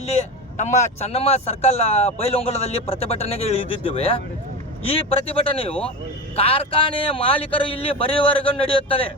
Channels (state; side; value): normal; both; correlation 0.24